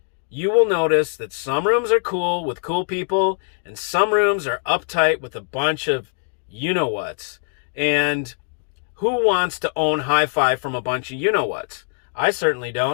you will notice that some rooms are cool with cool people and some rooms are uptight with a bunch of you-know-whats. And who wants to own hi-fi from a bunch of you-know-whats? I certainly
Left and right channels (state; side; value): silent; right; digital silence